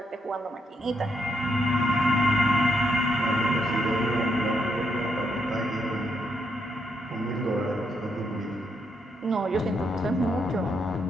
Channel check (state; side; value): normal; both; correlation 0.78